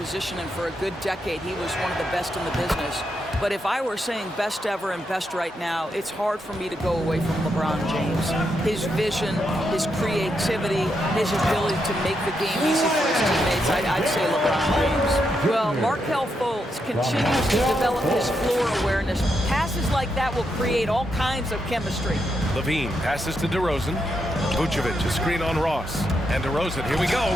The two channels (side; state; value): both; normal; correlation 0.82